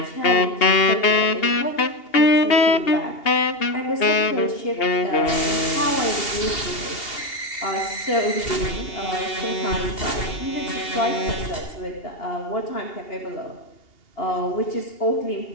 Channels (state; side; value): late; right; 2.8 ms